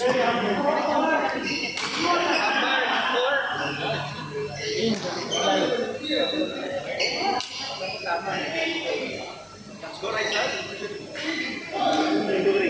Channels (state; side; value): identical; both; correlation 1.00